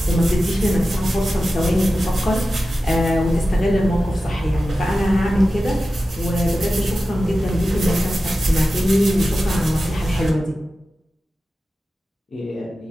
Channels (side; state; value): both; normal; correlation 0.94